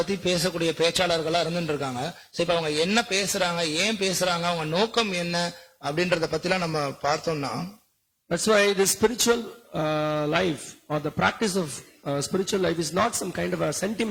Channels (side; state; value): both; identical; correlation 1.00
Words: பேசக்கூடிய பேச்சாளர்களா இருந்துட்டு இருக்காங்க. இப்ப அவங்க என்ன பேசுறாங்க, ஏன் பேசுறாங்க, அவங்க நோக்கம் என்ன அப்படின்றத பத்திலாம் நம்ம பார்த்தோம்னா, that's why the spiritual life or the practice of spiritual life is not some kind of a